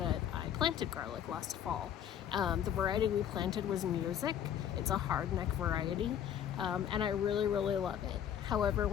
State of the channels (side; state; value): right; quieter; 9.7 dB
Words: I planted garlic last fall. The variety we planted was Music. It's a hardneck variety and I really love it. However,